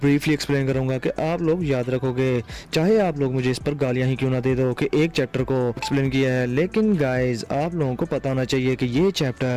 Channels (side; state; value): both; identical; correlation 1.00